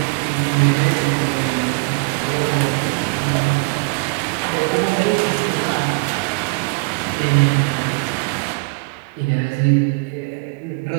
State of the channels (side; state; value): left; quieter; 30.1 dB